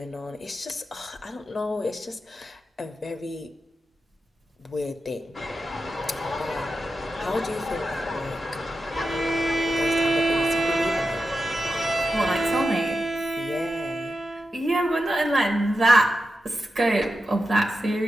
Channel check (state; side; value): normal; both; correlation 0.90